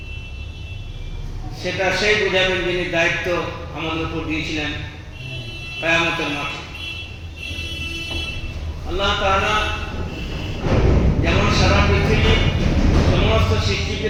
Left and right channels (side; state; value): both; identical; correlation 1.00